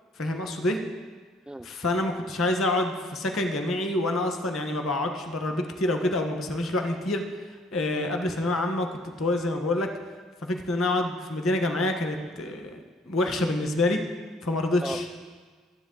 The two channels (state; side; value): normal; both; correlation 0.60